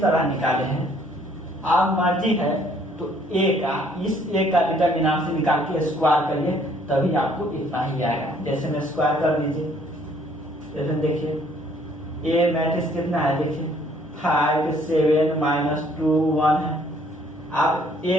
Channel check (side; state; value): both; normal; correlation 0.62